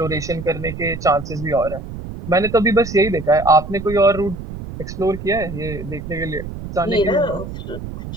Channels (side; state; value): right; noise; rumble, 10 dB below the sound